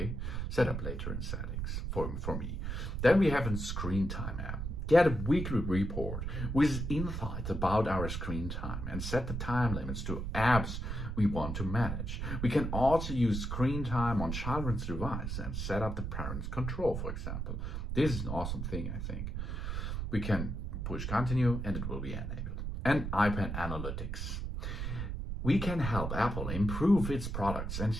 Set up later in settings for me. Then we have a screen time app. Get a weekly report with insights about our screen time and set the time limits to apps we want to manage. We can also use screen time on children's device and set up the parent's control, for example. This is an awesome thing, I think. We can push continue and it will be enabled. And iPad Analytics. We can help Apple improve its products and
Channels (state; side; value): noise; right; rumble, 3 dB below the sound